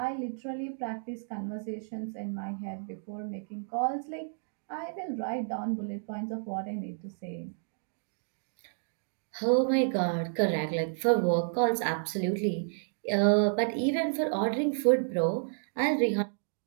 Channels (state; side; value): silent; left; digital silence